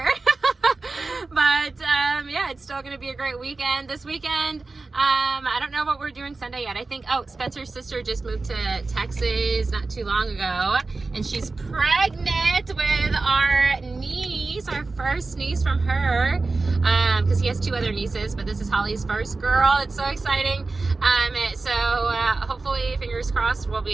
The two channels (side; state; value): left; quieter; 3.7 dB